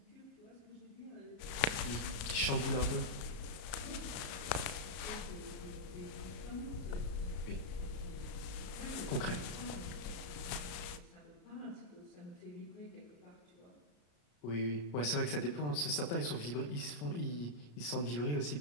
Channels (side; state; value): right; late; 34 ms